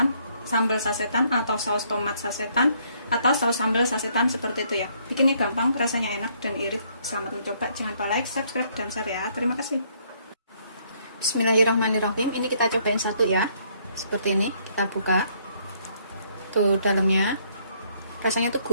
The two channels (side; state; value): both; inverted; correlation -0.67